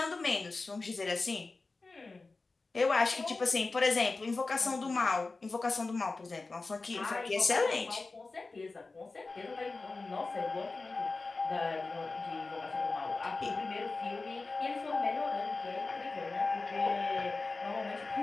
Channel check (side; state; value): right; quieter; 3.7 dB